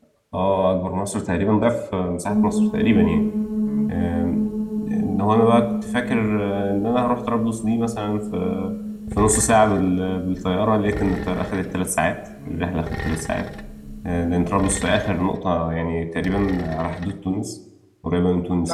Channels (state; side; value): identical; both; correlation 1.00